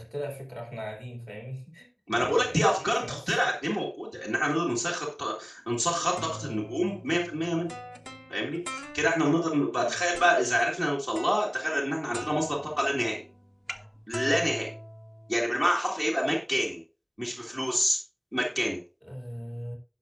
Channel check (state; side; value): identical; both; correlation 1.00